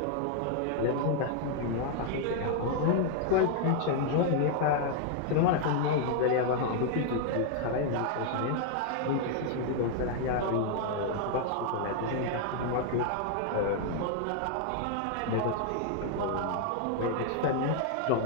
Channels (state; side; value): different; both; correlation 0.00